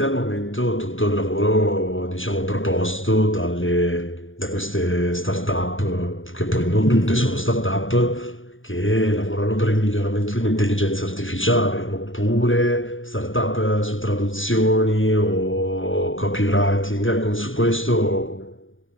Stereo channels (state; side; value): late; right; 0.57 ms